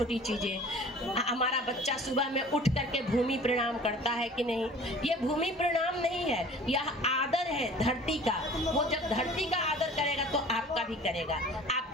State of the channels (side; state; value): both; normal; correlation 0.45